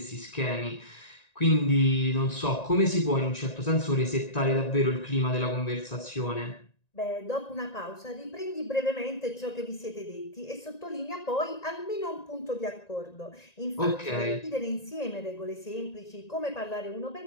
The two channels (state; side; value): late; right; 1.9 ms